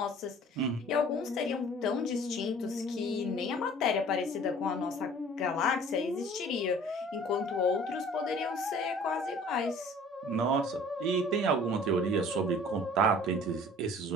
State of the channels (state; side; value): normal; both; correlation 0.49